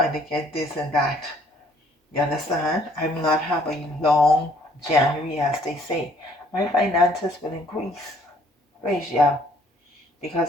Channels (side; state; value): both; normal; correlation 0.61